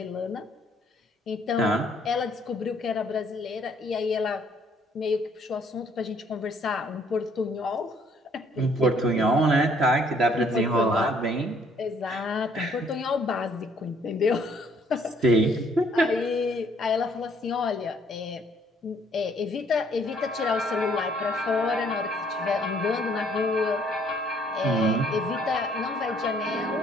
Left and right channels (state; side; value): normal; both; correlation 0.63